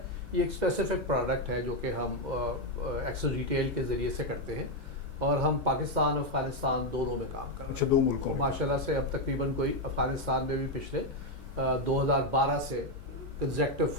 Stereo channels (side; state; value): both; normal; correlation 0.05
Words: یہ ایک اسپیسیفک پروڈکٹ ہے جو کہ ہم ایکسل ریٹیل کے ذریعے سے کرتے ہیں، اور ہم پاکستان افغانستان دونوں میں کام کر رہے ہیں. اچھا، 2 ملکوں میں ماشاء اللہ سے اب تقریباً کوئی افغانستان میں بھی پچھلے 2012 سے کنزیکٹو